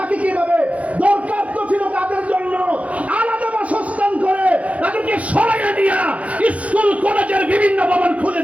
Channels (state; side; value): late; left; 0.066 ms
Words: কিভাবে? দরকার তো ছিল তাদের জন্য আলাদা বাসস্থান করে তাদেরকে সরাইয়ে নিয়ে স্কুল কলেজের বিভিন্ন ভবন খুলে